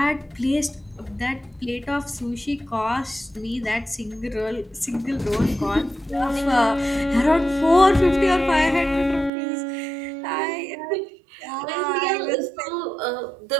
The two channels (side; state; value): left; drops out; at 9.3 s